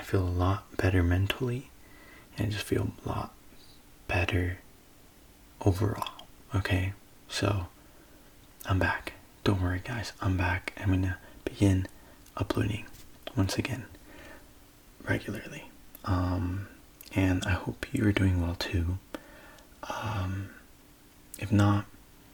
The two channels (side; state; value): both; identical; correlation 1.00